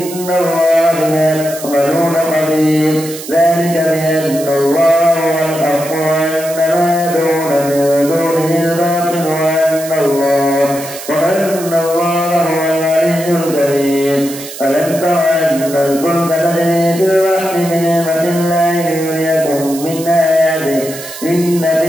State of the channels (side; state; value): right; noise; hiss, 12 dB below the sound